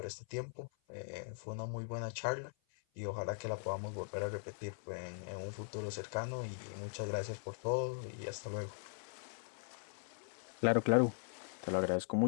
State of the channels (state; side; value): silent; right; 51 dB below the other